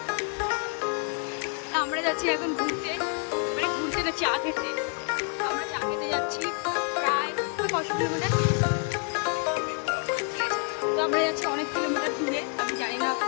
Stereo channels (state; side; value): quieter; right; 38.2 dB